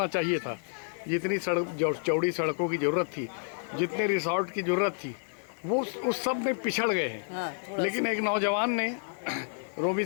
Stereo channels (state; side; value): silent; right; digital silence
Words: चाहिए था, जितनी चौड़ी सड़कों की ज़रूरत थी, जितने रिसोर्ट की ज़रूरत थी, वो उस सब में पिछड़ गए हैं। लेकिन एक नौजवान ने रोमी